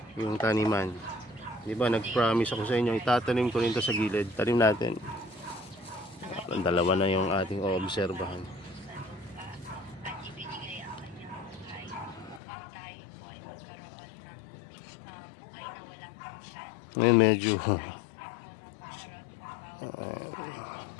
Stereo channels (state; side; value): drops out; right; at 12.4 s